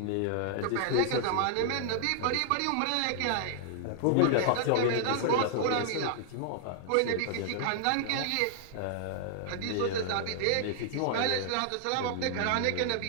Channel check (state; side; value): different; both; correlation -0.01